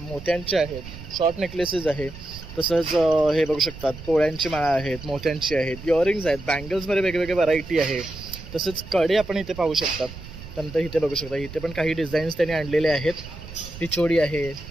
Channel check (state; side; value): noise; right; rumble, 13 dB below the sound